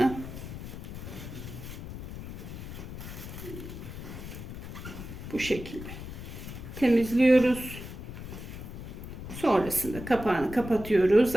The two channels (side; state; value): left; noise; rumble, 10 dB below the sound